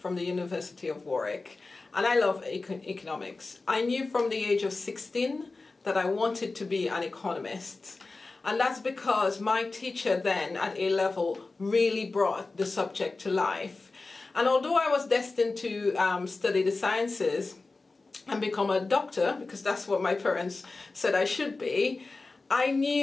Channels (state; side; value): quieter; right; 3.6 dB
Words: the University of Warwick, and I love economics. I knew from the age of 16 that I wanted to be an economist, and that's because my teacher then at A level really brought the subject to life. And although I was destined to study the sciences and become a doctor, because that's what my parents said I should be, I